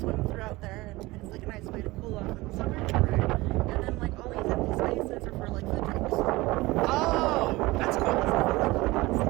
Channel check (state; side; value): quieter; left; 20.6 dB